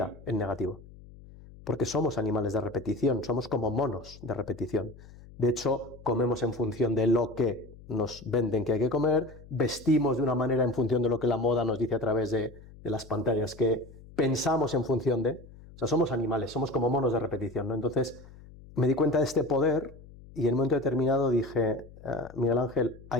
en negativo. Porque somos animales de repetición, somos como monos de repetición. De hecho, comemos en función de lo que nos venden que hay que comer, vestimos de una manera en función de lo que la moda nos dice a través de las pantallas, que pensamos en función de... O sea, somos animales, somos como monos de repetición, ¿no? Entonces, me di cuenta de este poder y en un momento determinado dije, Miguel Ángel,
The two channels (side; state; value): left; noise; hum, 20 dB below the sound